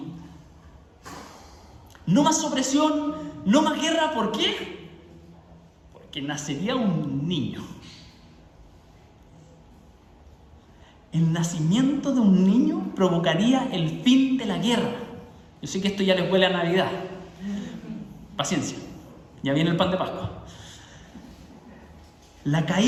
No más opresión, no más guerra. ¿Por qué? Porque nacería un niño. El nacimiento de un niño provocaría el fin de la guerra. Yo sé que esto ya les huele a Navidad. Paciencia. Ya viene el pan de Pascua. La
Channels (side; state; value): both; identical; correlation 1.00